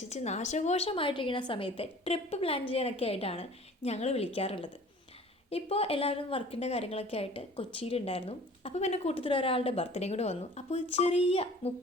നാശകോശമായിട്ടിരിക്കുന്ന സമയത്ത് ട്രിപ്പ് പ്ലാൻ ചെയ്യാനൊക്കെ ആയിട്ടാണ് ഞങ്ങൾ വിളിക്കാറുള്ളത്. ഇപ്പോൾ എല്ലാവരും വർക്കിൻ്റെ കാര്യങ്ങളൊക്കെ ആയിട്ട് കൊച്ചിയിലുണ്ടായിരുന്നു. അപ്പോൾ പിന്നെ കൂട്ടത്തിൽ ഒരാളുടെ ബർത്ത്ഡേ കൂടെ വന്നു. അപ്പോൾ ഒരു ചെറിയ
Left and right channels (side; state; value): both; normal; correlation 0.47